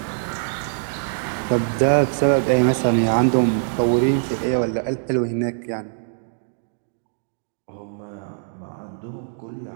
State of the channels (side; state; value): left; silent; digital silence